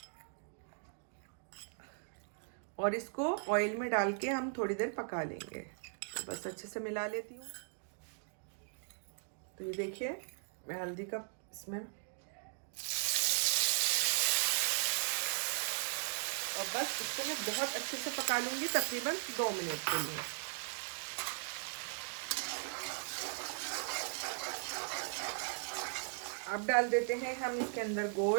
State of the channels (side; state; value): left; silent; digital silence